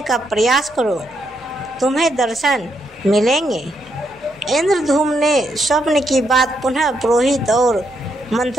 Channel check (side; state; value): both; normal; correlation 0.78